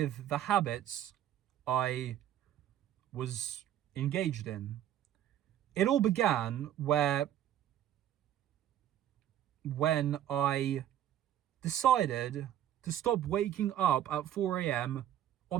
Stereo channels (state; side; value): quieter; left; 11.5 dB